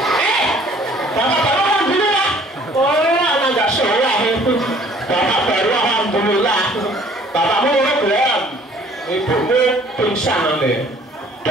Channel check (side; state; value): both; normal; correlation 0.55